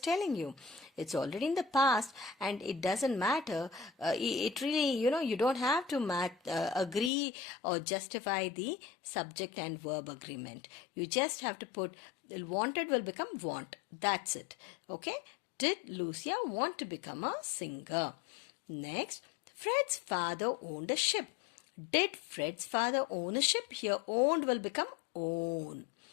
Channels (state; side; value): drops out; right; at 7.1 s